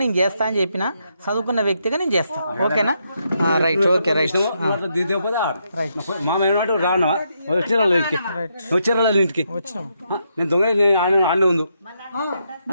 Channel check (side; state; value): both; inverted; correlation -0.79